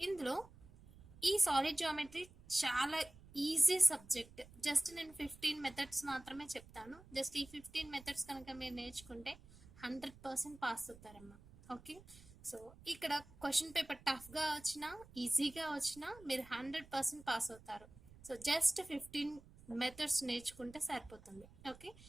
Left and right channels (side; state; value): right; noise; rumble, 21 dB below the sound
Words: ఇందులో ఈ సాలిడ్ జామెట్రీ చాలా ఈజీ సబ్జెక్ట్. జస్ట్ నేను 15 మెథడ్స్ మాత్రమే చెప్తాను. జస్ట్ ఈ 15 మెథడ్స్ కనుక మీరు నేర్చుకుంటే 100% పాస్ అవుతారమ్మా. ఓకే, సో ఇక్కడ క్వశ్చన్ పేపర్ టఫ్గా వచ్చినా ఈజీగా వచ్చినా మీరు 100% పాస్ అవుతారు. సో జస్ట్ 15 మెథడ్స్ నేర్చుకుంటే సరిపోతుంది. ఓకే,